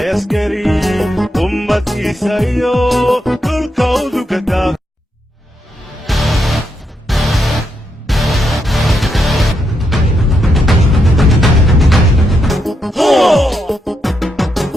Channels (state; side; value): normal; both; correlation 0.81